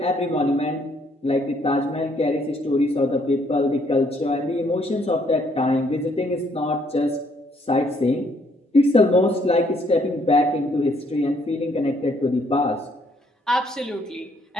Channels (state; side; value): normal; both; correlation 0.68